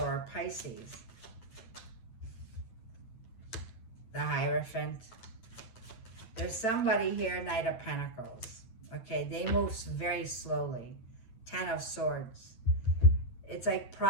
or Pisces. The Hierophant. There's somebody here, Knight of Pentacles. Okay, they move very slowly. Ten of Swords. It's like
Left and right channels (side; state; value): right; late; 9.0 ms